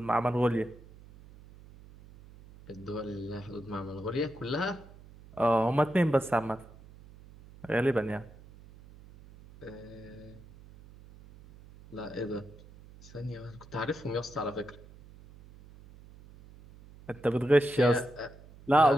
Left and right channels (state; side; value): noise; right; hum, 21 dB below the sound